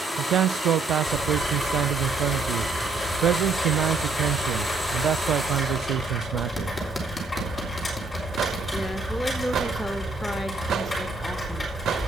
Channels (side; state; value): left; quieter; 3.7 dB